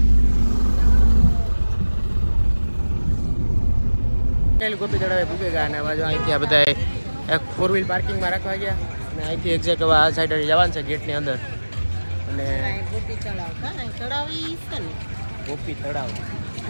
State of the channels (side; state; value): both; inverted; correlation -1.00